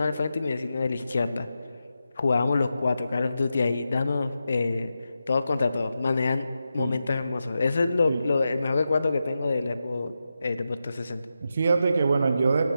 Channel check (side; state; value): both; inverted; correlation -0.89